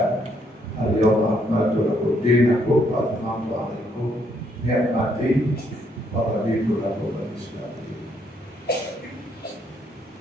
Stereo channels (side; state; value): both; normal; correlation 0.72